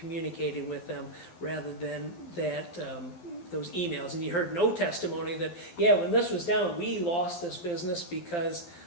with them rather than that those emails. And you heard no testimony that, yeah, when this was down, we lost this business because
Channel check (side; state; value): right; late; 12 ms